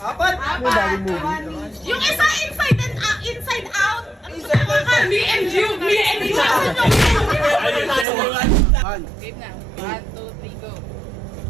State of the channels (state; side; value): drops out; left; at 8.1 s